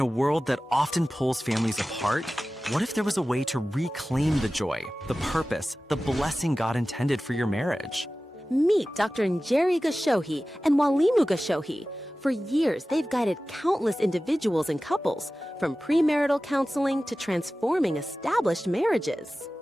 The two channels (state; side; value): normal; both; correlation 0.96